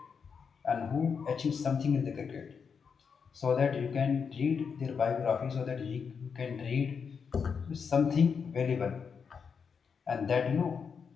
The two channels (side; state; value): right; quieter; 6.1 dB